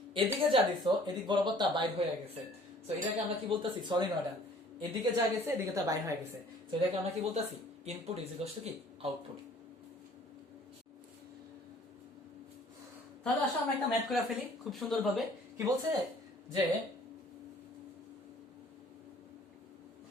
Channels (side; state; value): both; normal; correlation 0.54